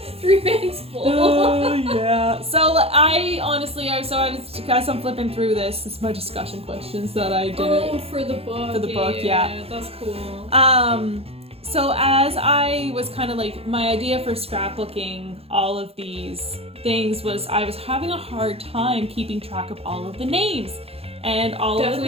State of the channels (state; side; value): late; left; 0.29 ms